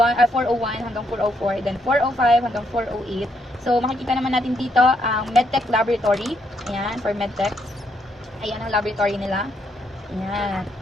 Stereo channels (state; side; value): normal; both; correlation 0.75